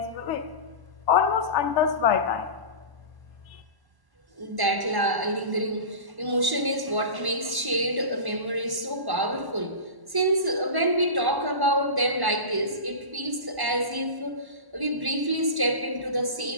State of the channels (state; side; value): late; left; 1.1 ms